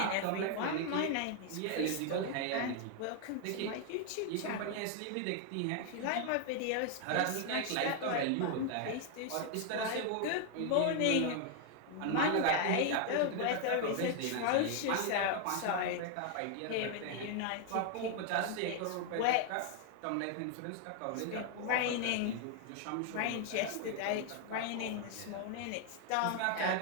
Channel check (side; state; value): both; different; correlation 0.00